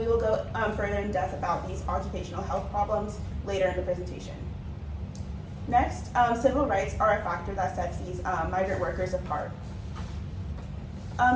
will go further in depth about these occupational health problems later in the presentation. Next, civil rights are a factor that sets these migrant workers apart.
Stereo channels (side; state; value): both; identical; correlation 1.00